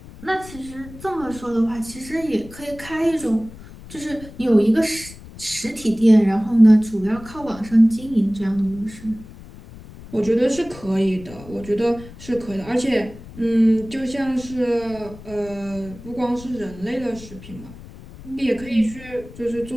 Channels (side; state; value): left; noise; rumble, 17 dB below the sound